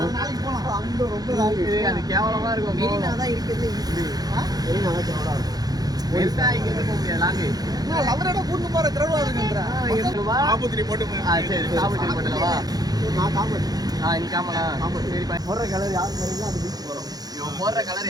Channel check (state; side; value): late; left; 0.19 ms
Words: அது கேவலமா இருக்கும் மெரினா தான் இருக்குது மெரினா தான் கேவலமா இருக்கும் பெருசா இங்க இருந்து போக முடியாது லாங்கு லவரோட கூட்டு போற திரவாதுங்கன்ற காபூத்திரி போட்டு சரி காபூத்திரி போட்டுலவா நான் காமெடி நீ காமலா சரி போடுற கலர் யார் போறீங்களோ அது பீச் போறோம் இவன் போடுற கலர்